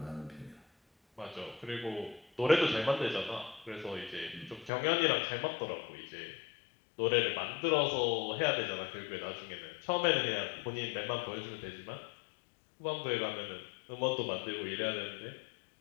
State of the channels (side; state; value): right; drops out; at 4.7 s